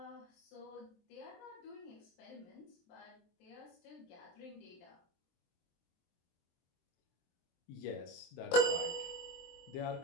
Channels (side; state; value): right; late; 23 ms